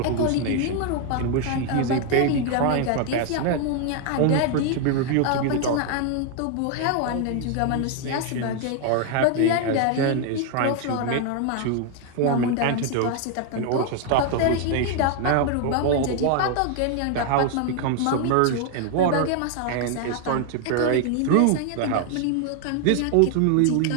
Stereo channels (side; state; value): both; different; correlation 0.00